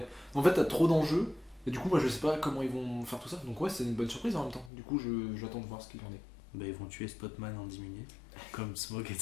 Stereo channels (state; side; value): drops out; right; at 4.7 s